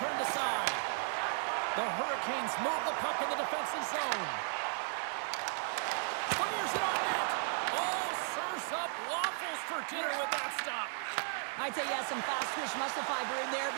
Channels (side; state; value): left; silent; 54 dB below the other